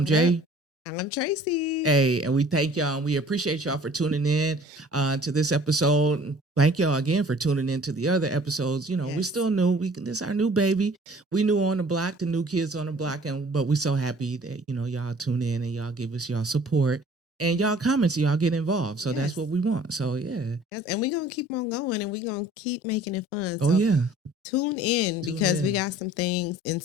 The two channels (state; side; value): normal; both; correlation 0.51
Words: Jay. I'm Tracy. Hey, and we thank y'all and we appreciate y'all for tuning in to this episode. Thank y'all again for tuning in to the other episodes. You know, Yes. we still new. This is our new baby. We new on the block, the new kids on the block, but we so happy that y'all tune in and y'all give us y'all support and y'all comments. Y'all get involved. So that's what we want. So yeah. Yes, and we're gonna keep on going and we're gonna keep making it fun. Oh yeah. Tune in because we got some things in